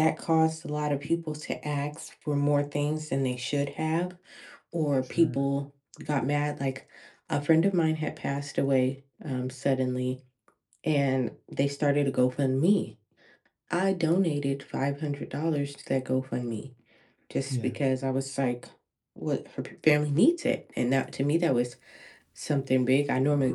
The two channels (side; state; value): both; identical; correlation 1.00